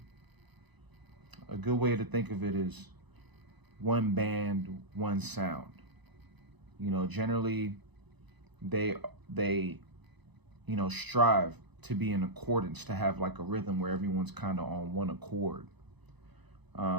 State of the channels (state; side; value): late; left; 1.0 ms